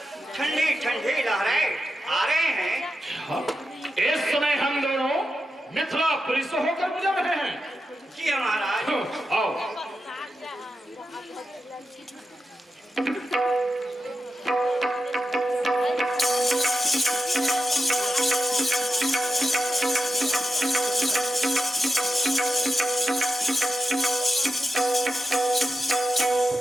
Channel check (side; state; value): both; normal; correlation 0.88